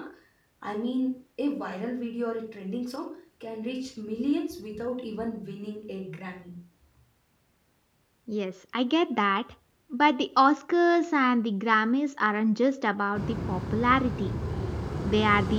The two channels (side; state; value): both; identical; correlation 1.00